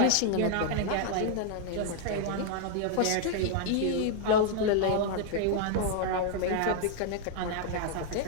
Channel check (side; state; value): both; different; correlation 0.00